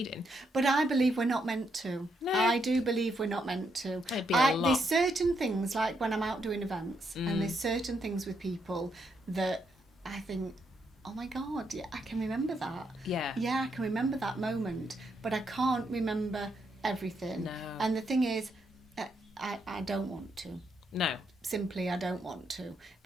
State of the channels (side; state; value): both; normal; correlation 0.78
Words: But I believe we're not meant to. No. I do believe we're not meant to. It'd be a lot. There's certain things, like when I'm out doing events, and there's certain things with people that I think, oh my God, yeah, I can remember that. Yeah. Yeah, I can remember that moment, but I can't remember everything. No. And the thing is, I don't want to. No. Simply, I don't want to,